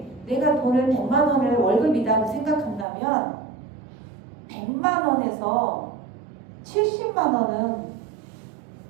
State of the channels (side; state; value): left; drops out; at 2.9 s